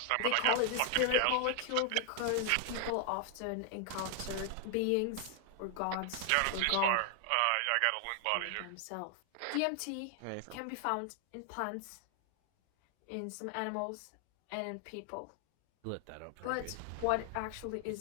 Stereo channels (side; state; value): both; different; correlation 0.00